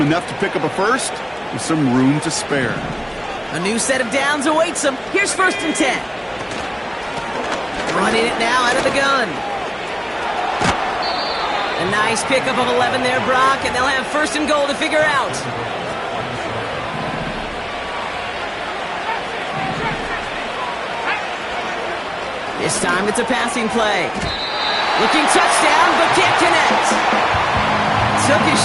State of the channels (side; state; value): both; identical; correlation 1.00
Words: enough to pick up a first with some room to spare. A new set of downs awaits him. Here's 1st and 10. Running it now out of the gun. A nice pickup of 11 there, Brock, and they'll have 1st and goal to figure out. This time it's a passing play. Looking touchdown, but can't connect. Took his